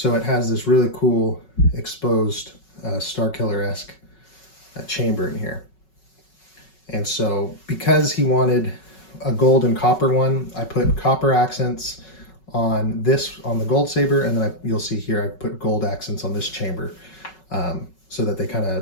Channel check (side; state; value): right; late; 5.4 ms